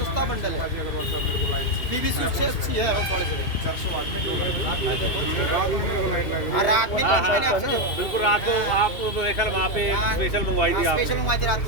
सस्ता बंडल है। PVC उससे अच्छी है हैवेल्स वाले से। 400 वाट में 2 लाइट। हाँ, रात में नहीं, मैंने आपसे जो बिल्कुल रात को आप स्पेशल वहाँ पे स्पेशल मंगवाई थी आप। स्पेशल मंगवाए थे रात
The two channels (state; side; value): late; right; 2.4 ms